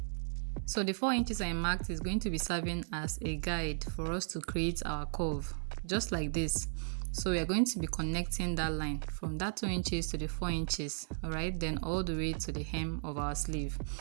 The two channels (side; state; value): left; silent; 54 dB below the other